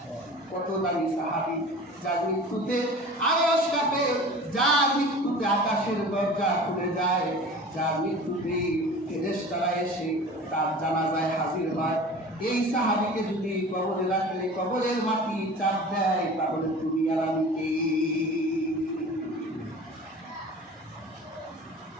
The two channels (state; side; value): normal; both; correlation 0.39